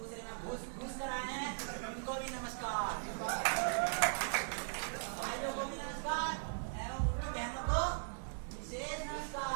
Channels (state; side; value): silent; left; digital silence